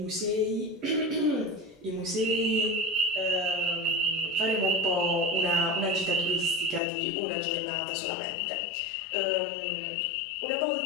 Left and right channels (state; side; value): drops out; right; at 6.8 s